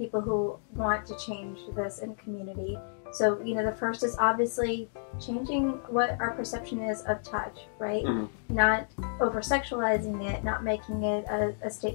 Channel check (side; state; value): right; silent; digital silence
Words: who want to change this in community. So, the first is obviously changing what our perception is of touch, right? Mm-hmm. Not over-sexualizing it, not making it a